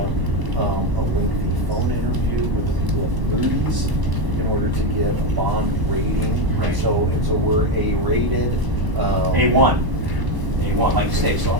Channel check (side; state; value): left; late; 1.0 ms